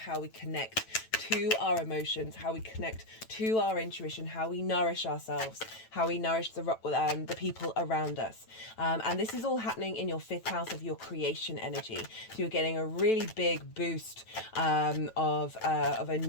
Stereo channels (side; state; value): right; late; 9.1 ms